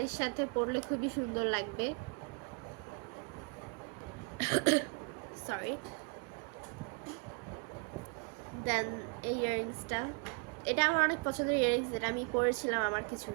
সাথে পরলে খুবই সুন্দর লাগবে। সরি। দেন এই ইয়াররিংসটা, এটা আমার অনেক পছন্দের ইয়াররিংস, এটা আমি পরেছিলাম আমার কিছু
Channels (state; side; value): quieter; left; 37.4 dB